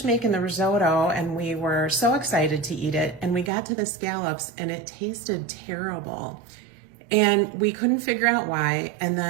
making the risotto and we were so excited to eat it. And we got to the scallops and it tasted terrible. And we couldn't figure out why. And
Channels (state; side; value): drops out; left; at 3.5 s